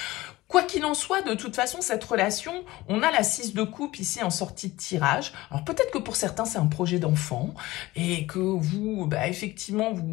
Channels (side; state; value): right; quieter; 18.7 dB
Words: Quoi qu'il en soit, de toute façon, cette relation, on a la 6 de coupe ici en sortie de tirage. Alors peut-être que pour certains, c'est un projet d'enfant et que vous, effectivement,